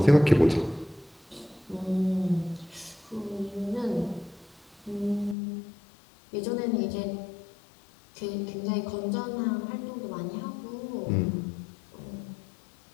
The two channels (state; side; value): drops out; right; at 5.4 s